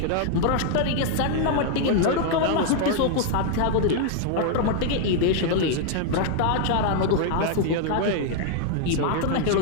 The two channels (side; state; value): both; different; correlation 0.00